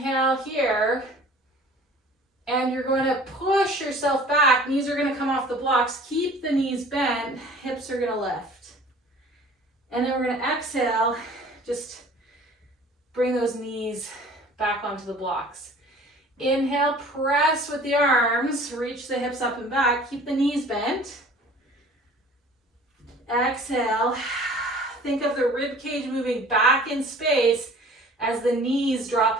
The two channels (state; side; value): normal; both; correlation 0.48